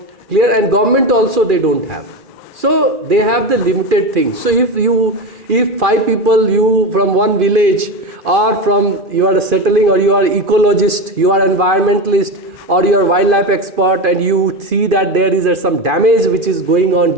clear? And government also they don't have. So they have the limited things. So if 5 people, you from one village, or from you are settling, or you are ecologist, you are environmentalist, or you are wildlife expert, and you see that there is some damage which is going on,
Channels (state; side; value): late; left; 2.5 ms